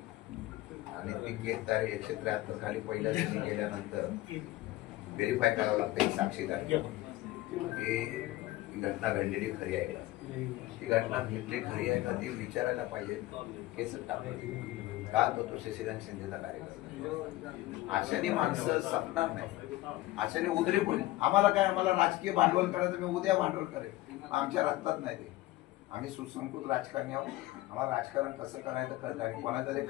आणि ती केस तारीख 173 खाली पहिल्या दिवशी गेल्यानंतर व्हेरीफाय करावं लागतं एक साक्षीदार की घटना घडलेली खरी आहे का, ती घटना घडली खरी आहे का ती विचारायला पाहिजे. केस टाकलं का तो शशिकांत शिंदेचा कार्यक्रम अशाने माणसं संपणार नाही, अशाने उदरी होईल. आम्हाला काय, आम्हाला राजकीय भांडवल करायचं, मी उद्या भांडवल करेन, आमच्या रक्तात नाही ते. आम्ही सुसंस्कृत राजकारणी आहोत, आम्हाला राजकारण कसं करायचं कळतं. आणि कोणाचा तरी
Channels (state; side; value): quieter; right; 17.5 dB